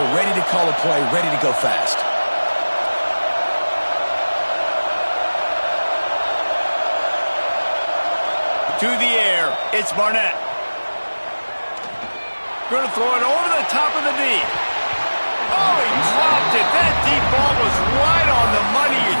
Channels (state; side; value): inverted; both; correlation -1.00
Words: ready to call a play, ready to go fast. To the air, it's Barnett. Going to throw it over the top of the D. Oh, he dropped it. That deep ball was right on the money. You